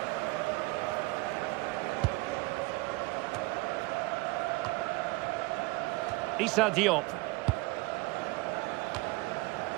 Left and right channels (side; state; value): left; quieter; 23.5 dB